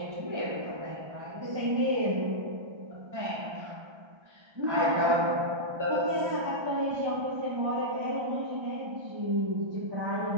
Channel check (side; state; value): left; late; 1.3 ms